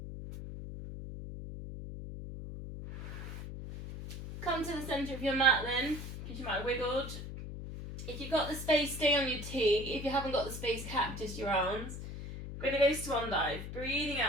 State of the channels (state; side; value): noise; left; hum, 8 dB below the sound